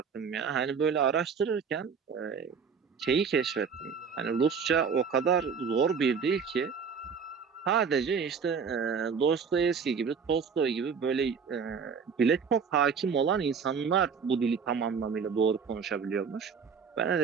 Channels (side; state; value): left; quieter; 6.1 dB